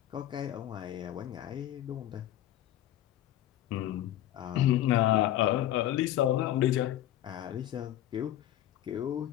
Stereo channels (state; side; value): quieter; right; 12.8 dB